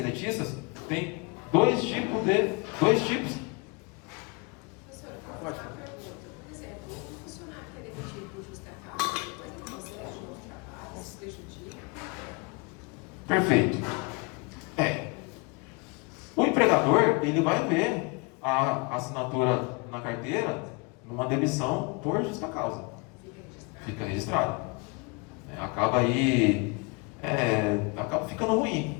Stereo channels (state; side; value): quieter; right; 31.2 dB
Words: tem dois tipos. Pode. Por exemplo, um funcionário que é demitido por justa causa, depois ele consegue um novo trabalho, se prejudica. Perfeito. O empregador, ele vai ver a assinatura na carteira numa demissão por justa causa. Fica registrado. Acaba aí, acaba ficando